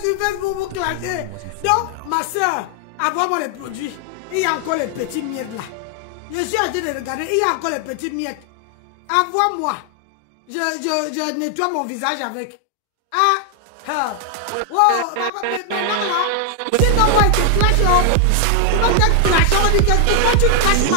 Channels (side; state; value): both; different; correlation 0.00